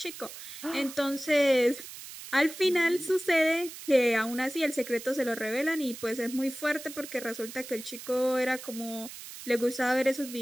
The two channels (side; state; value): right; noise; hiss, 13 dB below the sound